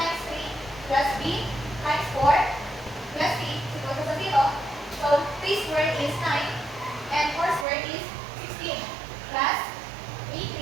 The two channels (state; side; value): drops out; left; at 7.7 s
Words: 3 plus b times 4 plus c is equal to 0. So, 3 squared is 9 and 4 squared is 16 plus